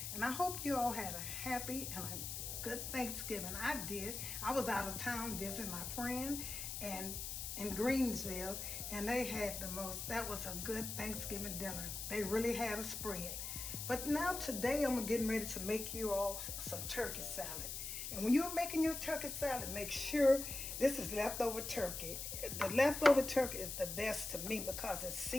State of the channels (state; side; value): noise; left; hiss, 5 dB below the sound